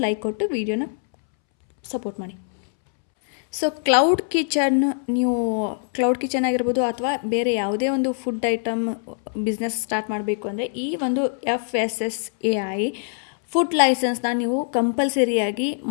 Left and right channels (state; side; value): silent; right; 63 dB below the other